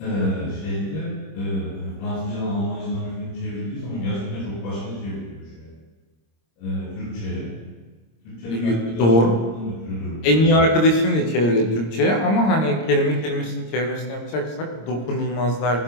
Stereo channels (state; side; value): late; right; 26 ms